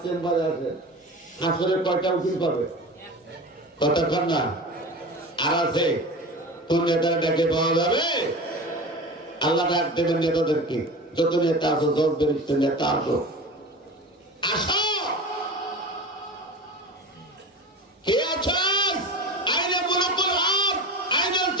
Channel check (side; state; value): both; normal; correlation 0.32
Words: চেম্বারে আসেন। হাসরে কয়টা উকিল পাবে? কতক্ষণ না? আর আছে কোন নেতাটাকে পাওয়া যাবে? আল্লাহ ডাক দেবেন নেতাদেরকে, যত নেতা আছো, জজ ব্যারিস্টার নেতা আছো, আসো। কে আছেন? আইনে মুলকুল হক, আইনাল